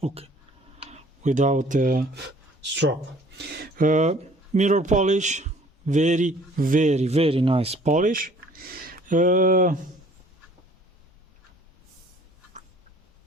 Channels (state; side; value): normal; both; correlation 0.55